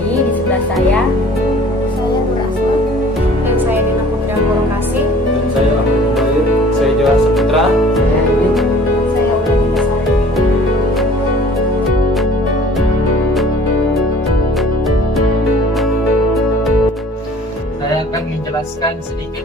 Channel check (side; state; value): both; normal; correlation 0.50